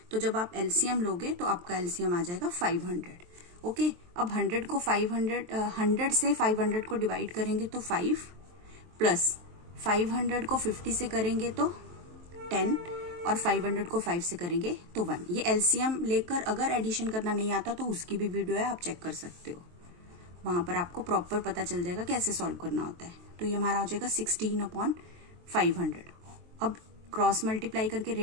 तो जब आप LCM लोगे तो आपका LCM आ जाएगा 500, ओके। अब 100 से 500 को डिवाइड करेंगे तो 5 प्लस 500 को 50 से करेंगे तो 10 और 500 को 5 से करेंगे तो 1। ये LCM लेकर अगर एडिशन करना नहीं आता तो उसकी भी वीडियो है, आप चेक कर सकते हो, वहां पर आपको प्रॉपर पता चल जाएगा कैसे सॉल्व करना होता है। तो ये हमारा हो जाएगा 16/500। अब क्रॉस मल्टीप्लाई करके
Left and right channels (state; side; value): late; left; 23 ms